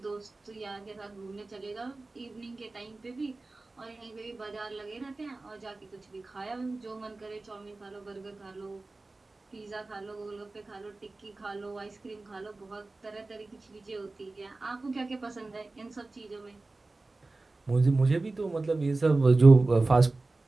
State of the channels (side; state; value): left; quieter; 3.3 dB